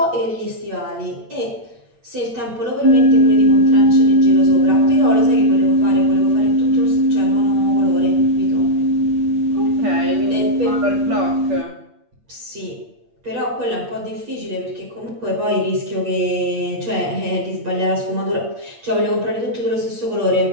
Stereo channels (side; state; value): left; late; 8.6 ms